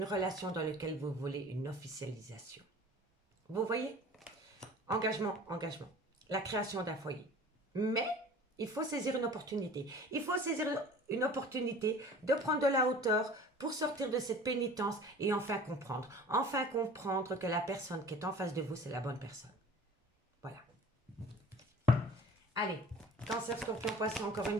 relation dans laquelle vous voulez une officialisation. Vous voyez? Engagement, engagement. La création d'un foyer. Mais il faut saisir une opportunité. Il faut saisir une opportunité de prendre de la hauteur pour sortir de cette pénitence et enfin comprendre. Enfin comprendre que la personne qui est en face de vous, c'est la bonne personne. Voilà. Allez, cancer, scorpion, poisson, encore une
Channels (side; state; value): both; normal; correlation 0.44